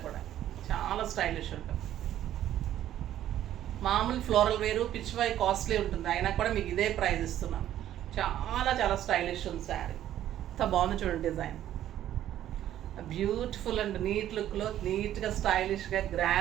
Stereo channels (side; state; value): left; quieter; 12.0 dB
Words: కూడా, చాలా స్టైలిష్ ఉంటుంది. మామూలు ఫ్లోరల్ వేరు, పిచ్వాయ్ కాస్ట్లీ ఉంటుంది, అయినా కూడా మీకు ఇదే ప్రైస్ ఇస్తున్నాను. చాలా చాలా స్టైలిష్ ఉంది శారీ. ఎంత బాగుంది చూడండి డిజైన్. బ్యూటిఫుల్ అండ్ నీట్ లుక్లో, నీట్గా స్టైలిష్గా